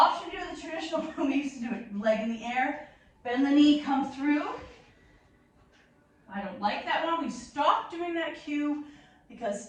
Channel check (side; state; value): both; identical; correlation 1.00